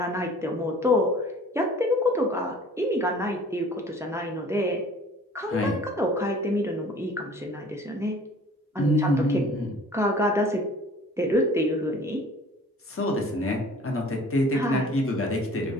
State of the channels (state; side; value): normal; both; correlation 0.49